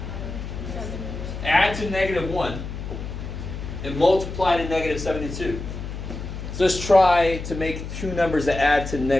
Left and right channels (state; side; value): noise; left; hum, 8 dB below the sound